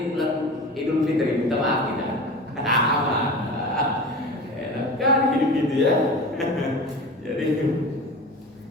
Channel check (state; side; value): normal; both; correlation 0.33